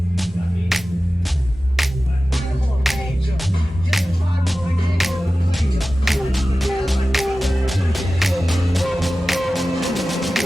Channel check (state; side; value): normal; both; correlation 0.95